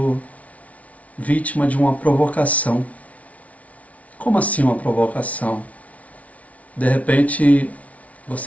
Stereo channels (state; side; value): late; right; 0.067 ms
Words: vítima de uma provocação. Como assim uma provocação? De repente,